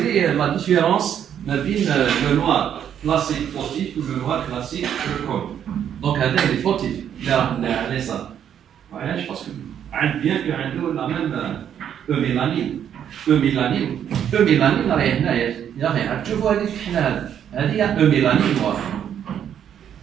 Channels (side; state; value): left; quieter; 9.2 dB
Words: لا ديفيرونس ما بين لو نوار كلاسيك فوتيف و لو نوار كلاسيك كول. دونك هذا اللي فوتيف اللي راه على اليسار. علاش باسكو عند بيان كو عنده لا ميم ميلانين. ميلانين راهي هنايا يا اخي تشوفوا هذيك الحنا هذه ميلانين نوار.